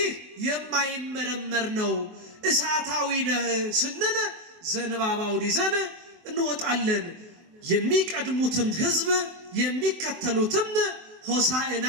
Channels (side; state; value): left; late; 23 ms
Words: የማይመረመር ነው፣ እሳታዊ ነህ ስንል ዘንባባውን ይዘን እንወጣለን። የሚቀድሙትም ህዝብ የሚከተሉትም ሆሳዕና